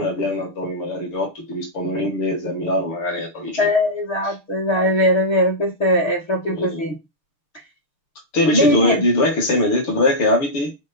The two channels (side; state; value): right; late; 6.7 ms